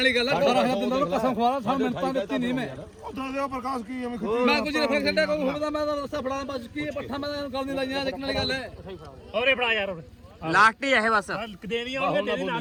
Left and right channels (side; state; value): both; identical; correlation 1.00